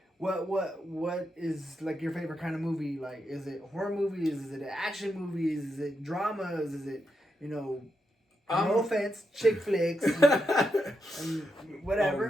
what is like your favorite kind of movie? Like, is it horror movies? Is it action movies? Is it dramas? Is it, no offense, chick flicks, and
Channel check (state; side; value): normal; both; correlation 0.84